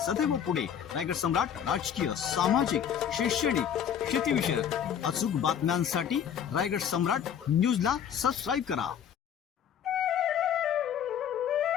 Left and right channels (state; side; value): quieter; right; 8.7 dB